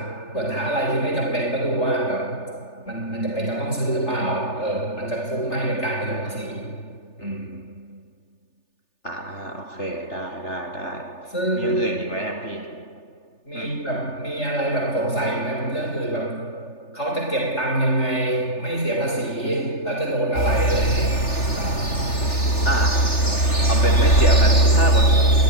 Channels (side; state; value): right; late; 3.4 ms